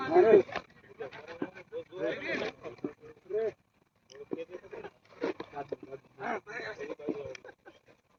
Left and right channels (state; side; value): identical; both; correlation 1.00